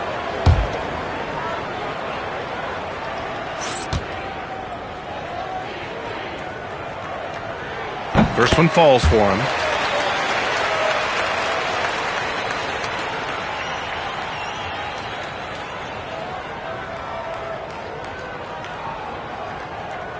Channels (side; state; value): both; identical; correlation 1.00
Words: First one falls for him.